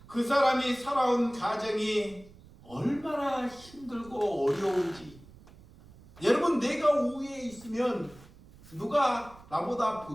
그 사람이 살아온 가정이 얼마나 힘들고 어려운지, 여러분, 내가 우위에 있으면 누가 나보다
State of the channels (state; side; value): noise; right; rumble, 22 dB below the sound